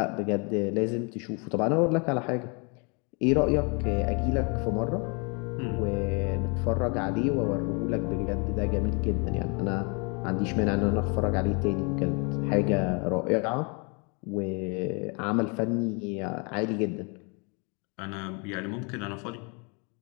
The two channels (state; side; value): quieter; right; 33.5 dB